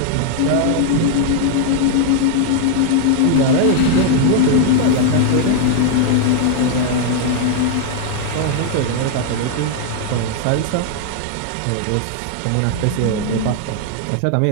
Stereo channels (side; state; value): both; different; correlation 0.00